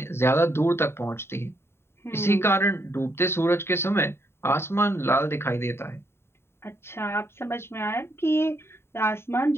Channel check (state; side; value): late; right; 0.12 ms